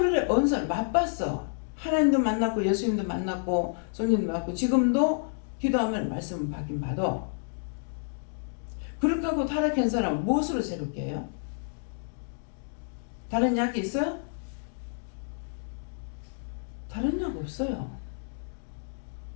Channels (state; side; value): silent; right; digital silence